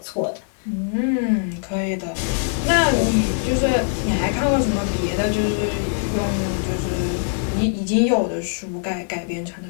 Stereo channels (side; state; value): right; silent; digital silence